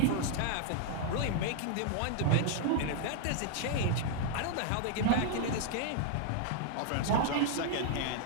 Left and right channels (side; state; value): both; different; correlation 0.00